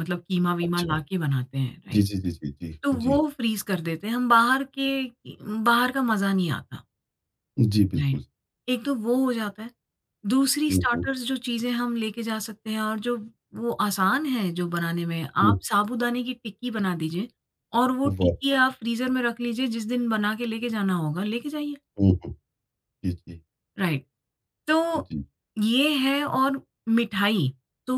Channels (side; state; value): both; identical; correlation 1.00